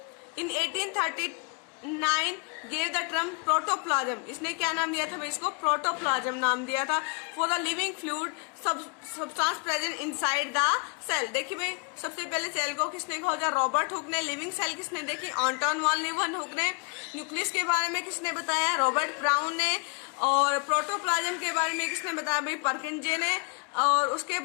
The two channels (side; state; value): right; quieter; 37.1 dB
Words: इन 1839 गेव द टर्म प्रोटोप्लाज्म, इसने क्या नाम दिया था भाई, इसको प्रोटोप्लाज्म नाम दिया था, for the living fluid substance present inside the cell. देखिए भाई सबसे पहले सेल को किसने खोजा, रॉबर्ट हुक ने। लिविंग सेल किसने देखी, एंटोन वॉन लीeuwenhoek ने। न्यूक्लियस के बारे में किसने बताया, रॉबर्ट ब्राउन ने। और प्रोटोप्लाज्म के बारे में किसने बताया भाई, परकिंजे ने। और उसके